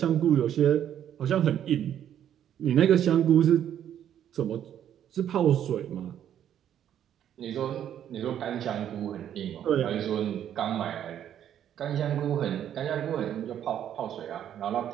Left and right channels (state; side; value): quieter; left; 10.2 dB